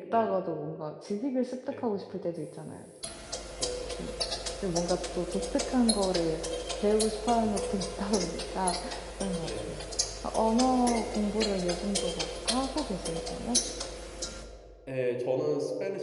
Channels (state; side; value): identical; both; correlation 1.00